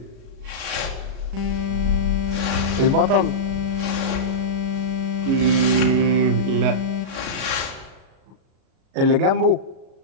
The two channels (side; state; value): left; late; 37 ms